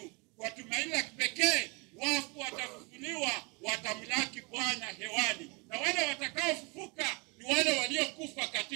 kwa tumaini la kipekee, wafu watafufuliwa, watamlaki Bwana hewani. Na wale watakaofufuka ni wale waliokufa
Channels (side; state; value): left; quieter; 29.4 dB